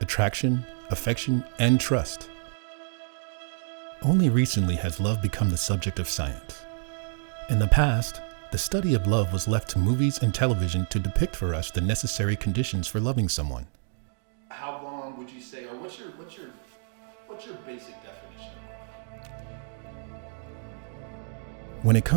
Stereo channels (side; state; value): left; silent; digital silence